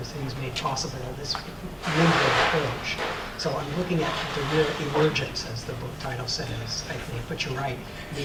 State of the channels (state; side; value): identical; both; correlation 1.00